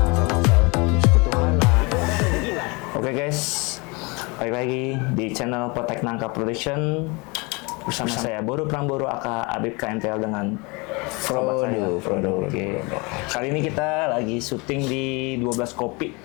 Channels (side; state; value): right; quieter; 27.9 dB